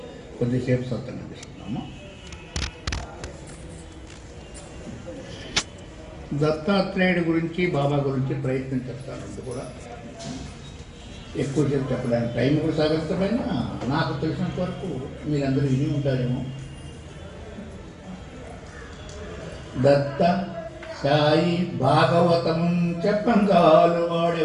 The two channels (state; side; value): identical; both; correlation 1.00